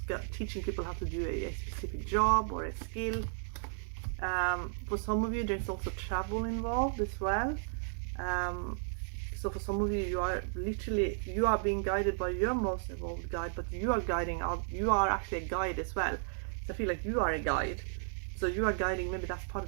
teaching people how to do a specific job or a skill. For some of you, there's also travel involved as well. So for some of you, you are being guided by your most evolved guide, but you are actually a guide as well. So I feel like you are a guide. So you are guiding, maybe that's part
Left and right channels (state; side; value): silent; left; digital silence